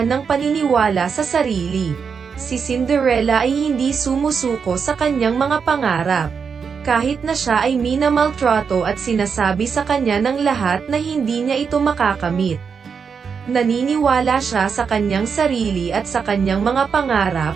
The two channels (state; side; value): quieter; left; 6.1 dB